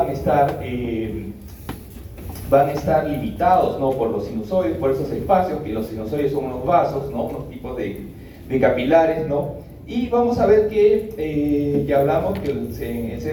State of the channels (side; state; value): both; identical; correlation 1.00